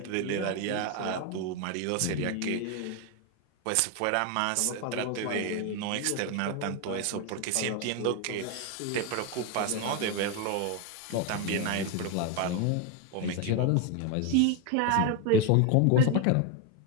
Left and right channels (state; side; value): different; both; correlation 0.01